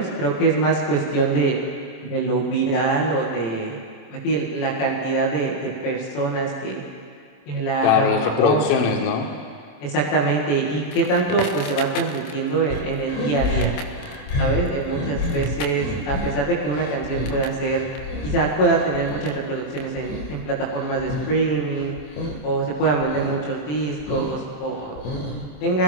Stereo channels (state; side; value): late; right; 27 ms